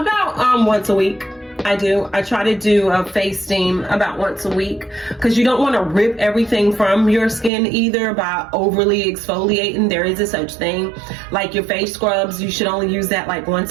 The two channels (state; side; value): drops out; left; at 7.5 s